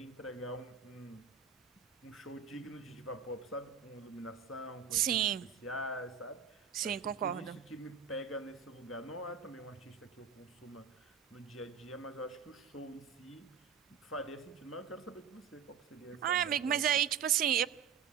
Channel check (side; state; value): left; quieter; 7.5 dB